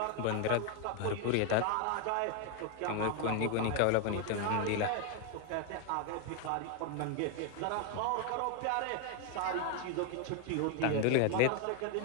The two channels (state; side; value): different; both; correlation 0.01